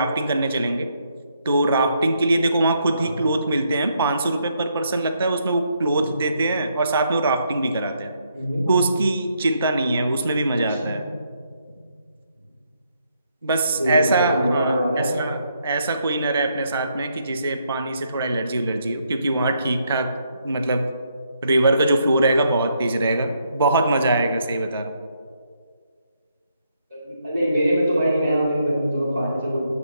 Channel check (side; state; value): both; inverted; correlation -0.75